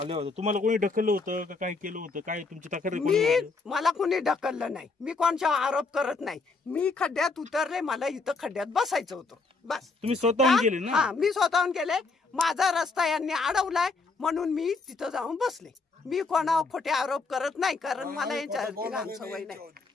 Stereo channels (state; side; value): quieter; right; 4.0 dB